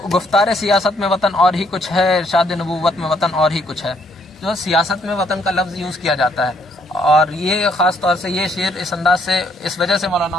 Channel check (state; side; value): normal; both; correlation 0.69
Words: گفتار سیاست میں وطن اور ہی کچھ ہے، ارشاد نبوت میں وطن اور ہی کچھ ہے. جو سیاست میں وطن کا لفظ یوز کیا جاتا ہے، اور یہ خاص طور سے یہ شعر اس انداز سے اس وجہ سے